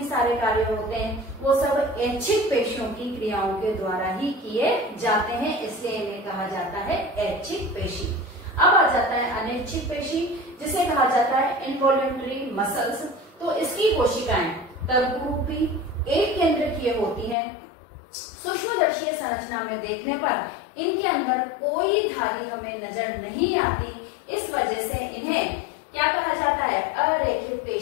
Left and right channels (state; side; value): drops out; right; at 17.4 s